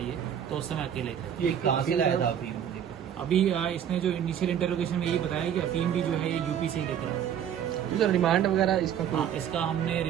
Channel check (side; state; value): left; quieter; 9.3 dB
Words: तो उस समय अकेले थे। ये कहाँ से लाया था अभी? अभी इसने जो इनिशियल इंटरोगेशन में यही बताया कि अफीम भी जो है ये यूपी से ही लेकर आया। सर रिमांड वगैरह इसका हाँ, इसका हमने